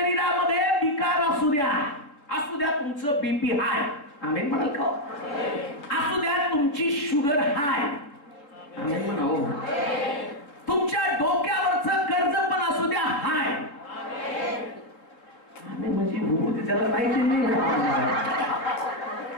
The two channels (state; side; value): late; right; 3.7 ms